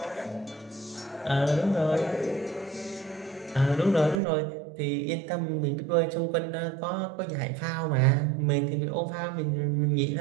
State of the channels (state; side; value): drops out; left; at 4.2 s